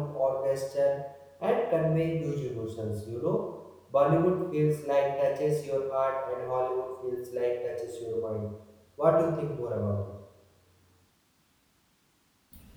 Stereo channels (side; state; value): both; identical; correlation 1.00